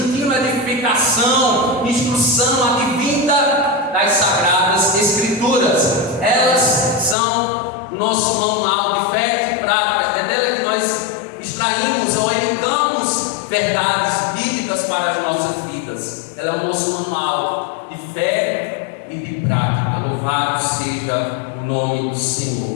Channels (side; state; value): right; drops out; at 7.2 s